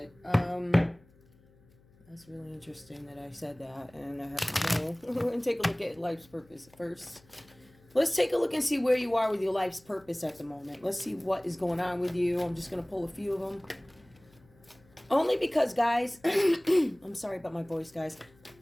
That's really interesting that I said that, and I have to know. We're going to take a look at life's purpose first. Let's take a look and see where you are with your life's purpose at the moment. Let's see what is going on with you. I'm just going to pull a few of them. Only because, guys, I'm sorry about my voice, guys.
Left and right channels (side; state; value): left; noise; hum, 29 dB below the sound